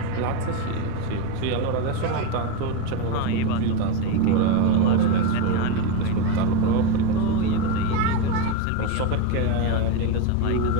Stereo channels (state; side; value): different; both; correlation 0.04